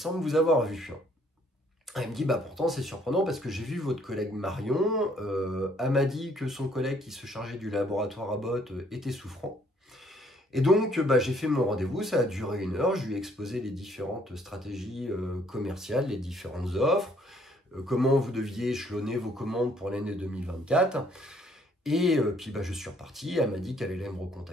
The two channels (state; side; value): normal; both; correlation 0.64